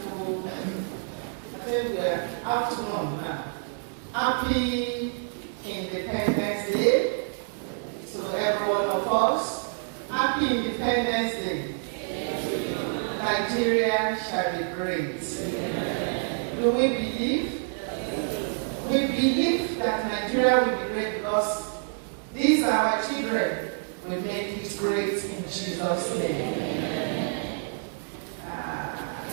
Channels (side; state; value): left; silent; digital silence